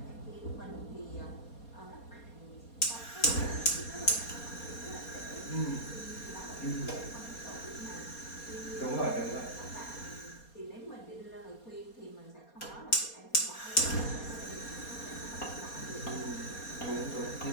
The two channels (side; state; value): right; late; 4.2 ms